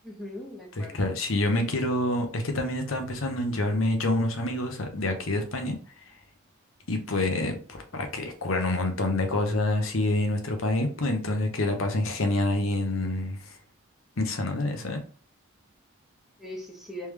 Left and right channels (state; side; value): normal; both; correlation 0.52